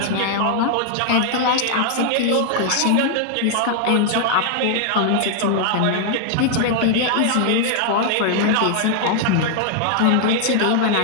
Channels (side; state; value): both; different; correlation 0.00